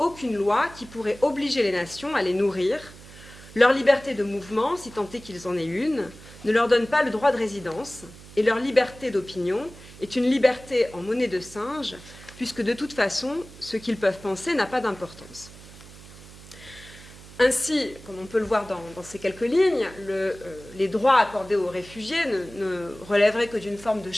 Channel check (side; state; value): right; noise; hum, 19 dB below the sound